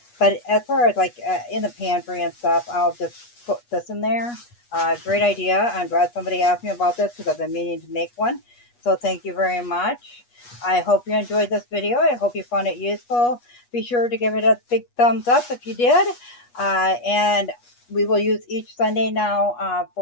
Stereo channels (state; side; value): late; right; 8.3 ms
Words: But as far as like in the pantry and stuff, I'll just put this in there. Great idea. I'm glad somebody asked me about this because I've been meaning to make one. So thank you very much. I hope you enjoyed this video. I hope you found it useful. Be sure to give it a big thumbs up if you did. And we will use each Sunday now